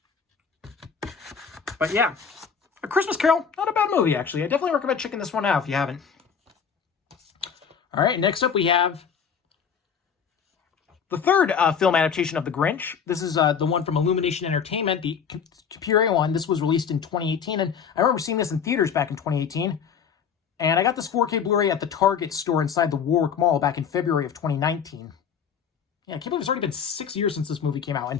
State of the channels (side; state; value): right; quieter; 6.9 dB